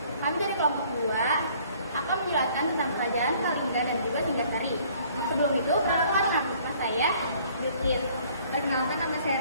Kami dari kelompok 2 akan menjelaskan tentang kerajaan Kalingga dan juga Singgasari. Sebelum itu, perkenalkan nama saya Witis. Perkenalkan nama saya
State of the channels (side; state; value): both; inverted; correlation -0.58